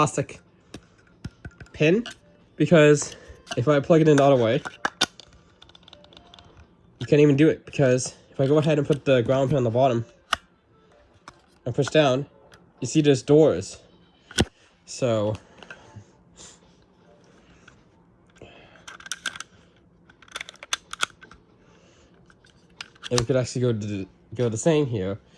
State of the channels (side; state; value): both; identical; correlation 1.00